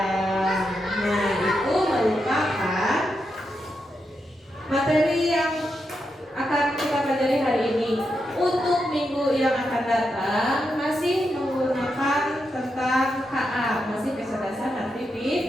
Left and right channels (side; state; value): both; normal; correlation 0.85